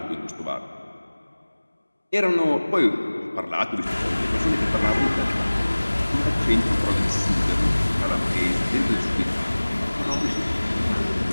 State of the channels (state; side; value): inverted; both; correlation -1.00